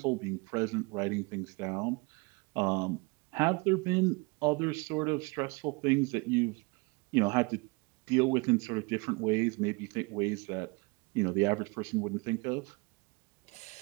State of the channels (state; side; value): quieter; left; 28.7 dB